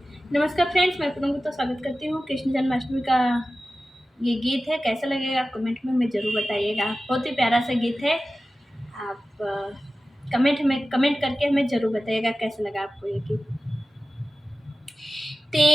नमस्कार फ्रेंड्स, मैं पूनम गुप्ता स्वागत करती हूँ। कृष्ण जन्माष्टमी का ये गीत है, कैसा लगेगा आप कमेंट में हमें ज़रूर बताइएगा। बहुत ही प्यारा सा गीत है। आप कमेंट करके हमें ज़रूर बताइएगा कैसा लगा आपको ये गीत।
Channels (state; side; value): normal; both; correlation 0.95